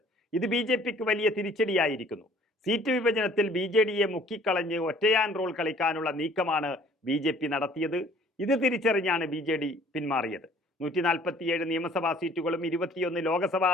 ഇത് BJPക്ക് വലിയ തിരിച്ചടിയായിരിക്കുന്നു. സീറ്റ് വിഭജനത്തിൽ BJDയെ മുക്കിക്കളഞ്ഞ് ഒറ്റയാൻ റോൾ കളിക്കാനുള്ള നീക്കമാണ് BJP നടത്തിയത്. ഇത് തിരിച്ചറിഞ്ഞാണ് BJD പിന്മാറിയത്. 147 നിയമസഭാ സീറ്റുകളും 21 ലോക്സഭാ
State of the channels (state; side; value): normal; both; correlation 0.55